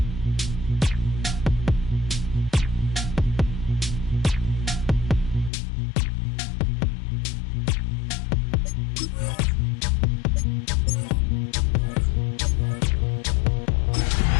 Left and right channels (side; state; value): right; drops out; at 5.5 s